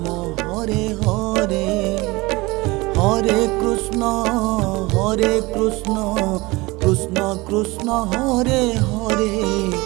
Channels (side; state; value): left; quieter; 22.6 dB